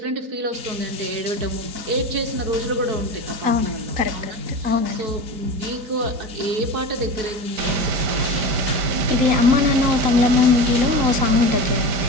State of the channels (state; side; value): late; left; 3.9 ms